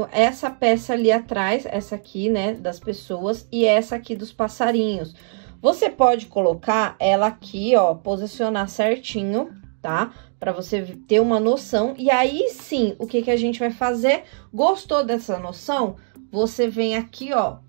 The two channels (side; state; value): left; silent; 65 dB below the other